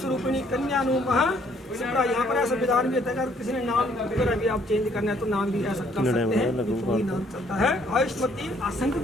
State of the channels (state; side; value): normal; both; correlation 0.64